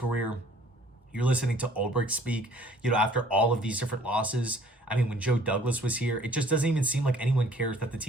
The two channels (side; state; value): both; normal; correlation 0.56